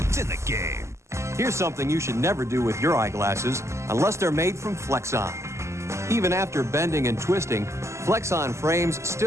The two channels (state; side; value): late; left; 0.13 ms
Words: It's in the game. Here's something you should never do with your eyeglasses unless they're made from Flexon. Even after bending and twisting, Flexon frames